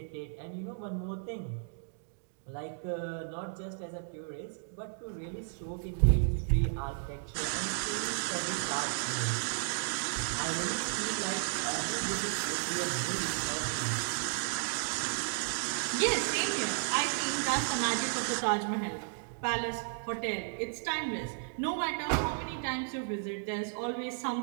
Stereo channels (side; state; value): left; silent; digital silence